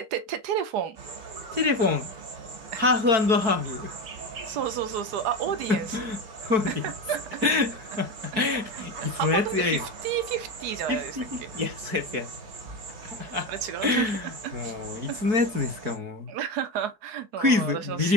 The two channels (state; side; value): late; left; 4.6 ms